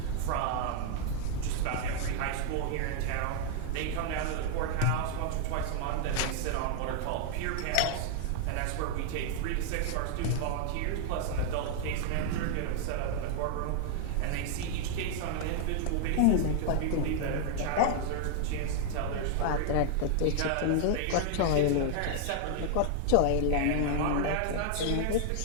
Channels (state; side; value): different; both; correlation 0.00